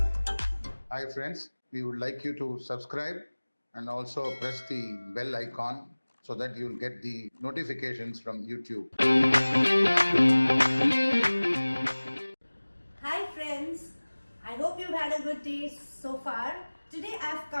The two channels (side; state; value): both; inverted; correlation -1.00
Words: friends, we would like you to subscribe and also press the bell icon so that you'll get the notifications from YouTube. Hi friends, I hope you've had a good day so far. Today I've